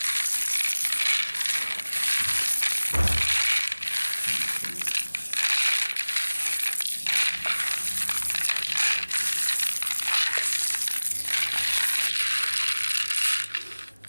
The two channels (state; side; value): inverted; both; correlation -1.00